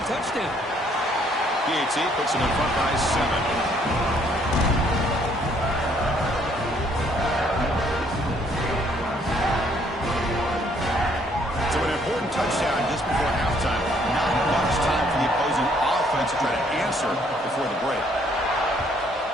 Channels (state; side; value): normal; both; correlation 0.65